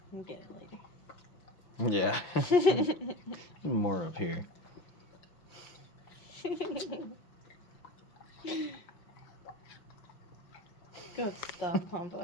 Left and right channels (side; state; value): right; late; 6.0 ms